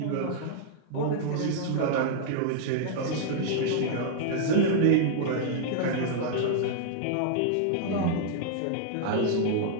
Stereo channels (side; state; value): both; different; correlation -0.01